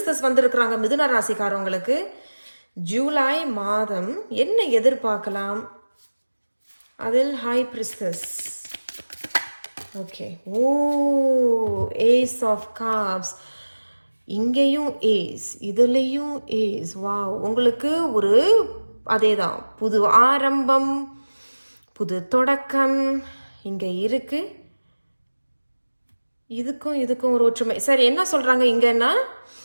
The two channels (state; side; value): inverted; both; correlation -1.00